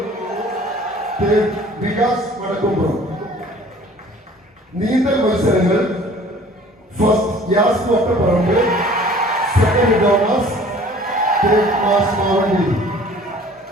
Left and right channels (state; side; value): normal; both; correlation 0.50